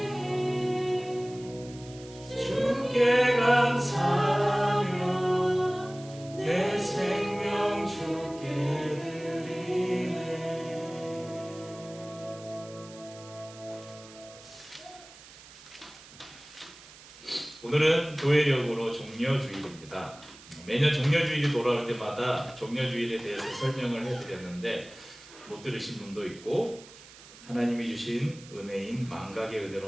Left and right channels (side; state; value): right; noise; hiss, 20 dB below the sound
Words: 주께 감사하며 내 생명 주께 드리네. 오늘은 교회력으로 종려주일입니다. 매년 종려주일이 돌아올 때마다 종려주일에 대해서 설명을 해드렸는데 못 들으신 분도 있고 하나님이 주신 은혜인 망각의 은혜로